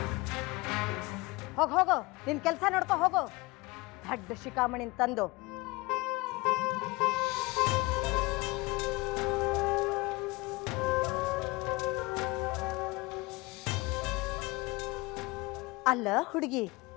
ಹೋಗು, ನಿನ್ ಕೆಲಸ ನೋಡ್ಕೊ ಹೋಗು. ದಡ್ಡ ಶಿಖಾಮಣಿನ್ ತಂದು ಅಲ್ಲ ಹುಡುಗಿ,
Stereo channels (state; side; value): quieter; right; 23.4 dB